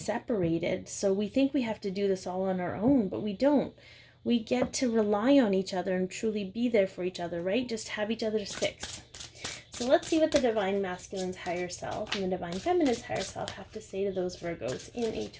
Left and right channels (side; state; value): both; identical; correlation 1.00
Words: so we think we have to do this all on our own, but we don't. We get to rely on each other and truly be there for each other, right? Just have each other's six. So let's see what the Divine Masculine's higher self and the Divine Feminine's higher self have to say to those Virgos in a